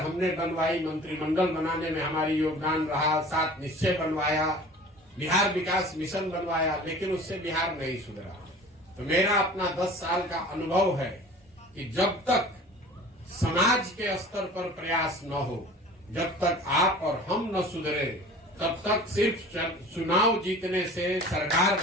बनवाई, मंत्रिमंडल बनाने में हमारी योगदान रहा, 7 निश्चय बनवाया, बिहार विकास मिशन बनवाया, लेकिन उससे बिहार नहीं सुधरा। तो मेरा अपना 10 साल का अनुभव है कि जब तक समाज के स्तर पर प्रयास न हो, जब तक आप और हम न सुधरे, तब तक सिर्फ चुनाव जीतने से, सरकार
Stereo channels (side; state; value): both; normal; correlation 0.43